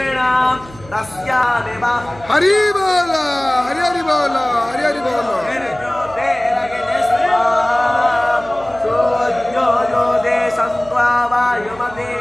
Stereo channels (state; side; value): noise; right; hum, 20 dB below the sound